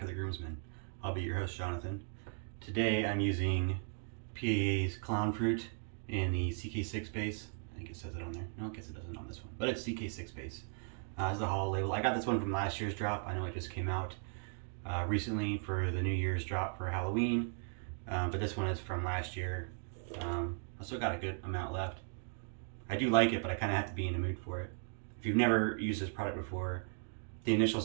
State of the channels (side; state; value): left; silent; 53 dB below the other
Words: to The Groomsman. I'll be your host, Jonathan. Today I'm using PAA's Clown Fruit in the CK6 base. I think it says it on there. No, I guess it doesn't on this one, but it's CK6 base. It's the haul label. I got this one from last year's drop. I know it just came out recently for the New Year's drop for Halloween, but this one is from last year. I still got a good amount left. I do like it, but I kind of have to be in the mood for it. If you've never used this product before, the initial